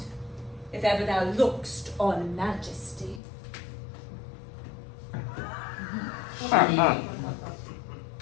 if ever thou look'st on majesty. She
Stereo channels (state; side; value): drops out; right; at 3.2 s